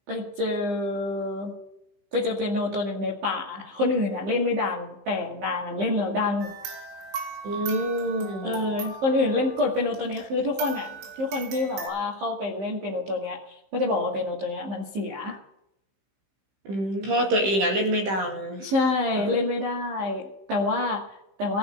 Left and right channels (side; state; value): left; late; 15 ms